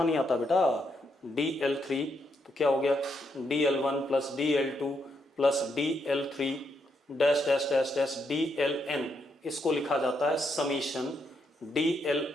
नहीं आता बेटा, dl3 तो क्या हो गया, dl1 plus dl2 plus dl3 dash dash dash dash dln, इसको लिखा जाता है summation dli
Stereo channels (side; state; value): both; normal; correlation 0.79